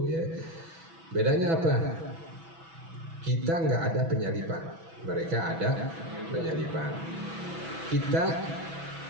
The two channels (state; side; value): late; left; 6.1 ms